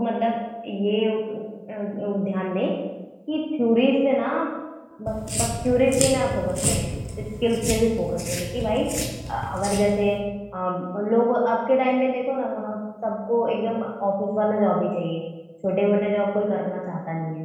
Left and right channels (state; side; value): identical; both; correlation 1.00